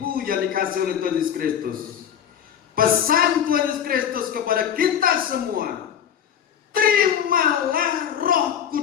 yang dikasihi oleh Tuhan Yesus Kristus, pesan Tuhan Yesus Kristus kepada kita semua, terimalah Roh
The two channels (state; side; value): quieter; right; 9.0 dB